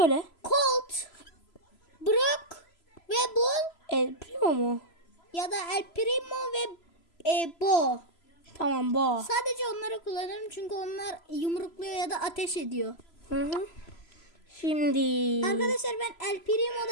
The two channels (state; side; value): late; right; 3.0 ms